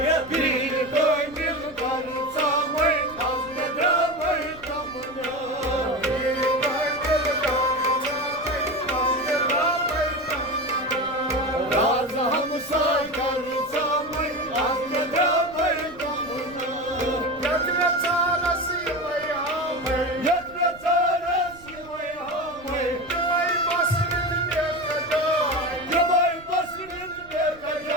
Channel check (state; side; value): noise; right; rumble, 22 dB below the sound